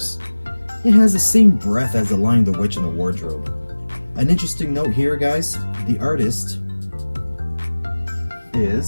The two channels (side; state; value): both; inverted; correlation -1.00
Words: It has the same breath as The Lion, the Witch, and the Wardrobe. An interesting note here, guys, the artist